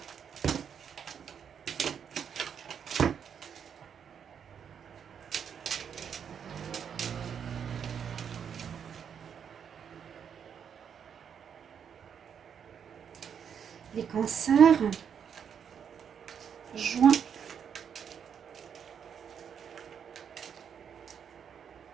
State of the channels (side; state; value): left; quieter; 7.7 dB